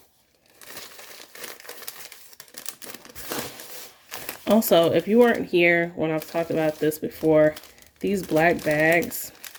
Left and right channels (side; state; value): both; identical; correlation 1.00